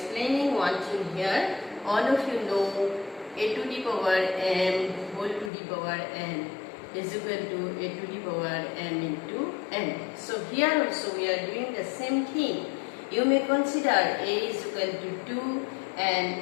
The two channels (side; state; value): right; drops out; at 5.5 s